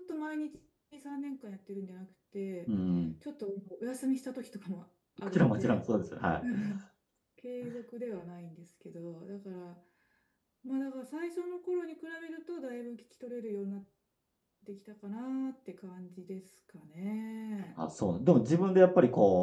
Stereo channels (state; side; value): identical; both; correlation 1.00